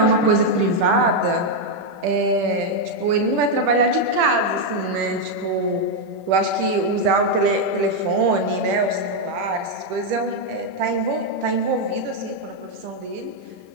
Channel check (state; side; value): late; left; 10 ms